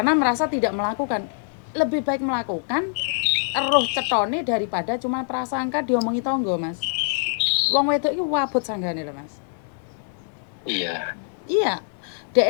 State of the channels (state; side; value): silent; right; digital silence